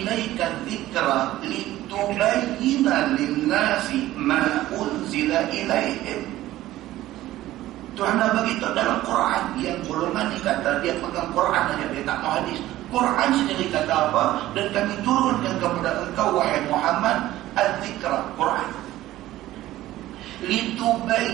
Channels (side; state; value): left; quieter; 15.2 dB